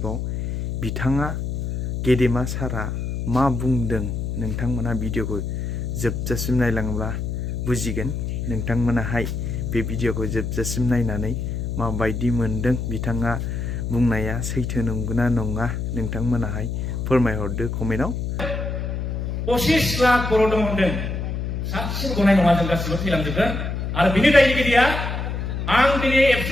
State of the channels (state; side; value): noise; left; hum, 3 dB below the sound